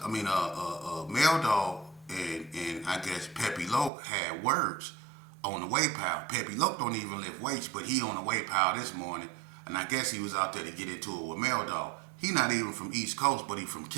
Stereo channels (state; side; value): drops out; left; at 3.9 s